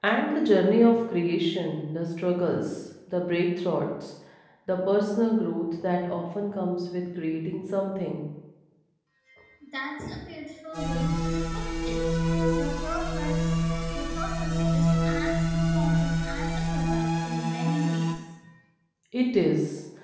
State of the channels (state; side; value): identical; both; correlation 1.00